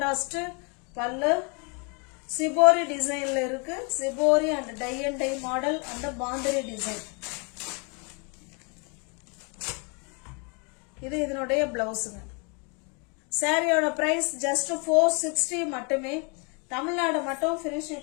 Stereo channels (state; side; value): quieter; right; 34.0 dB